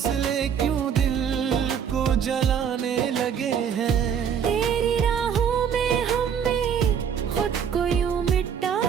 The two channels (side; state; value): left; quieter; 7.8 dB